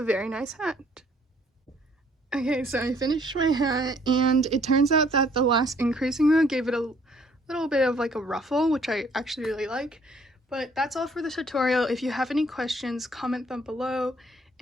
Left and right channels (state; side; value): normal; both; correlation 0.62